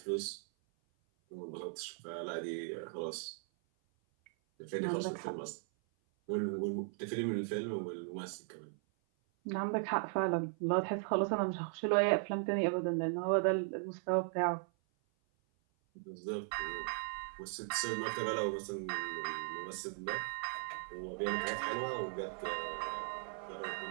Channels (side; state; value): left; silent; 53 dB below the other